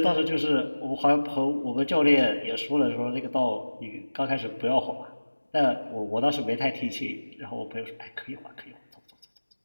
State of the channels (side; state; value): both; inverted; correlation -1.00